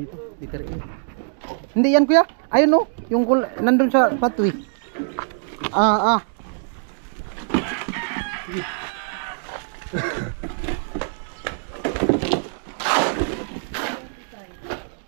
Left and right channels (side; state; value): left; silent; digital silence